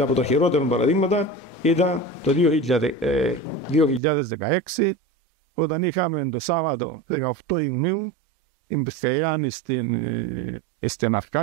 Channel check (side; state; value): left; drops out; at 4.0 s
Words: τα χειρότερα παραδείγματα ήταν το 2016, όταν είχαμε το Σάββατο 18 Ιουνίου την πυρκαγιά στην